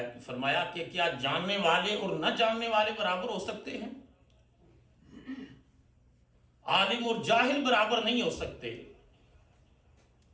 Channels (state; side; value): identical; both; correlation 1.00